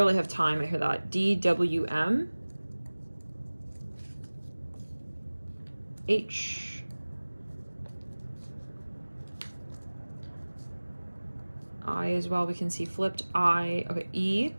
have time. I hear that. D, W, M. H. I as well, we can see flipped. I, okay, E.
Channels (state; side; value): inverted; both; correlation -1.00